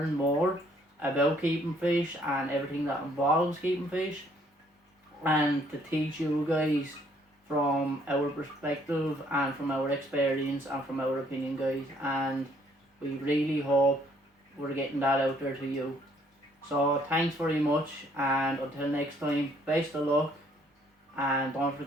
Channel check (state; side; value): normal; both; correlation 0.65